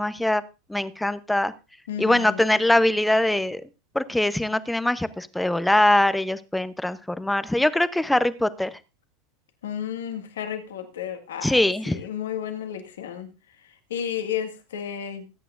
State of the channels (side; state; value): both; normal; correlation 0.91